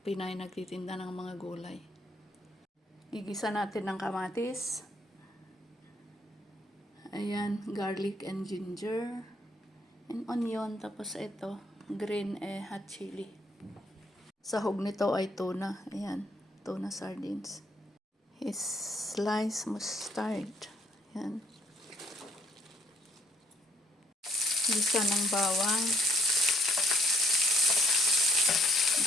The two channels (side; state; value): both; normal; correlation 0.67